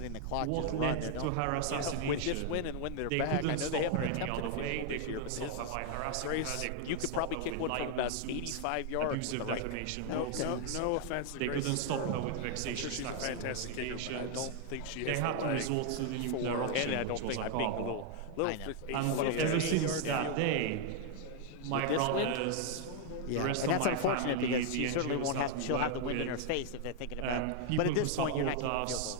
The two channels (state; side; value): different; both; correlation 0.00